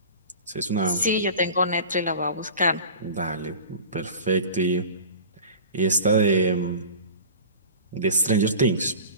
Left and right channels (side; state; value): both; inverted; correlation -0.38